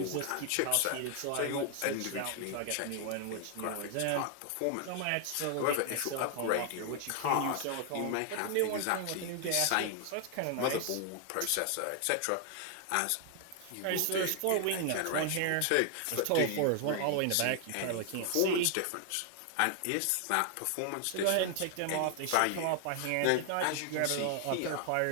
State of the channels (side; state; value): both; different; correlation 0.00